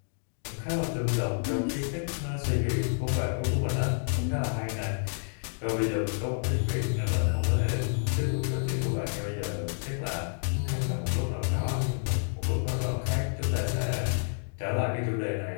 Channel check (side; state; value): right; silent; digital silence